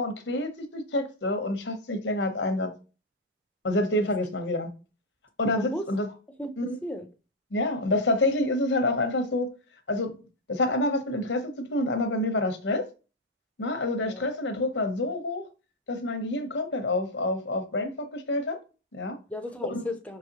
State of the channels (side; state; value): both; normal; correlation 0.00